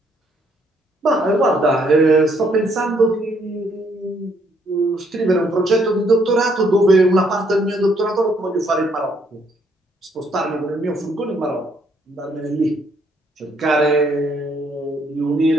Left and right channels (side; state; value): both; normal; correlation 0.69